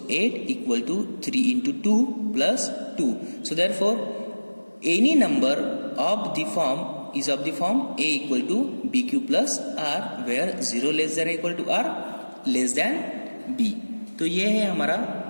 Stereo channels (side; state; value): both; inverted; correlation -1.00